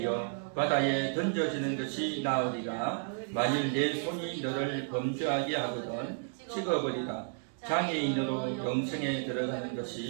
바다에 던져지는 것이 나으리라. 만일 내 손이 너를 범죄하게 하거든 찍어버리라. 장애인으로 영생에 들어가는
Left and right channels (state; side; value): silent; left; digital silence